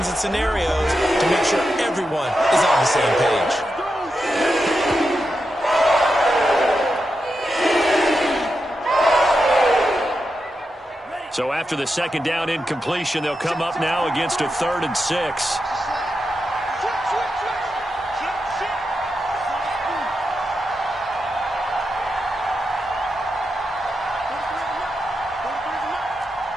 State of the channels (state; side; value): normal; both; correlation 0.87